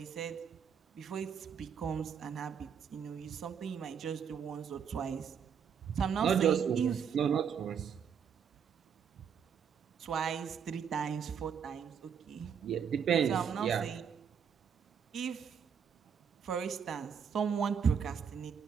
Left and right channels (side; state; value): left; quieter; 7.3 dB